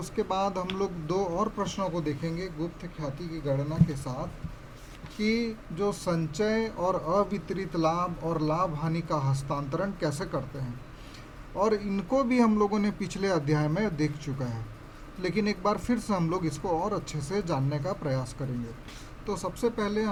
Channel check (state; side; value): identical; both; correlation 1.00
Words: बाद हम लोग दो और प्रश्नों को देखेंगे गुप्त ख्याति की गणना के साथ, कि जो संचय और अवितरित लाभ और लाभ हानि का हस्तांतरण कैसे करते हैं, और इनको भी हम लोगों ने पिछले अध्याय में देख चुका है, लेकिन एक बार फिर से हम लोग इसको और अच्छे से जानने का प्रयास करेंगे। तो सबसे पहले